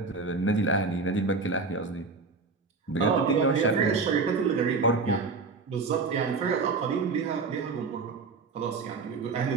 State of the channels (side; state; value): left; quieter; 4.3 dB